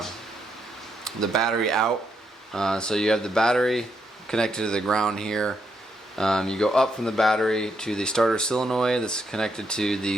battery out. So you have the battery connected to the ground here. You go up from the battery to the starter solenoid that's connected to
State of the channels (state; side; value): normal; both; correlation 0.78